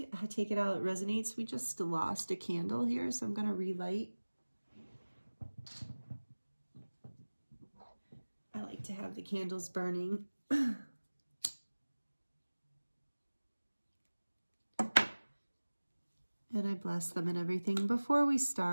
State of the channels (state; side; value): inverted; both; correlation -1.00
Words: I take it out, it resonates. We just lost a candle here, so I'm going to relight. I like to have the candles burning. And I bless them and everything before we